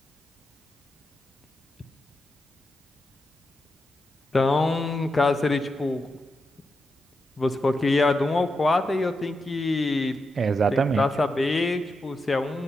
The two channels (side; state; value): both; normal; correlation 0.86